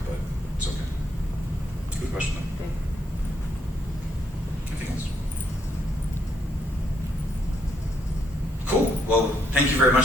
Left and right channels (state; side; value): normal; both; correlation 0.72